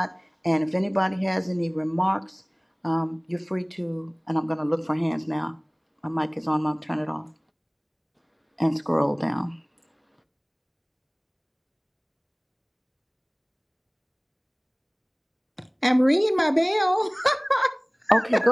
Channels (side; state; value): both; identical; correlation 1.00